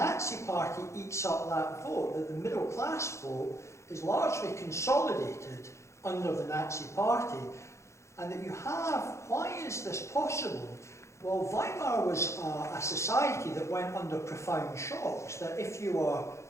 party eats up that vote, that the middle class vote is largely consolidated under the Nazi party. And that you have, why is this possible? Well, Weimar was a society that went under profound shocks, that if you were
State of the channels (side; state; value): right; late; 0.14 ms